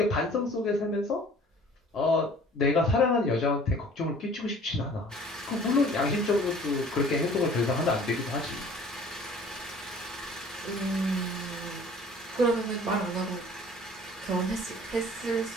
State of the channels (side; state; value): both; normal; correlation 0.50